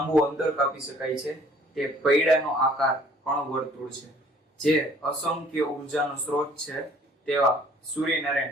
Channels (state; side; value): normal; both; correlation 0.56